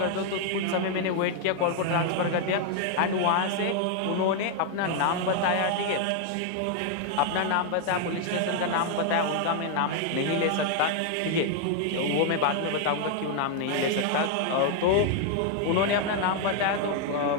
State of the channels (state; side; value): different; both; correlation 0.00